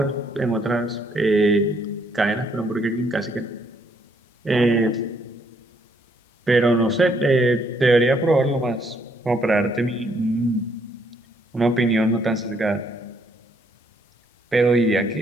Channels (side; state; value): both; normal; correlation 0.70